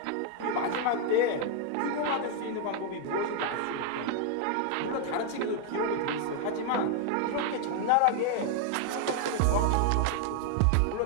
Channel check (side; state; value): both; different; correlation 0.00